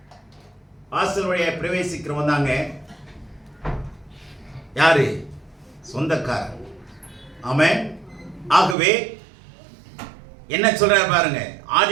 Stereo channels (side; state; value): left; drops out; at 8.8 s